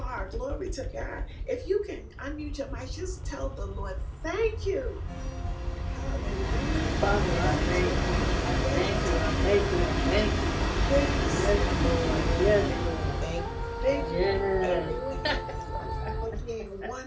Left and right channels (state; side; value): identical; both; correlation 1.00